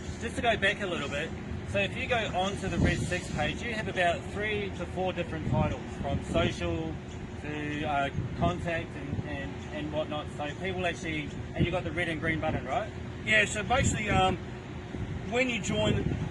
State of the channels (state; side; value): identical; both; correlation 1.00